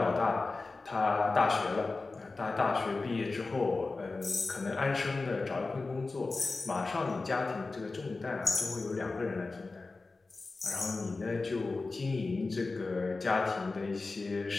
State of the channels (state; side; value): quieter; right; 3.7 dB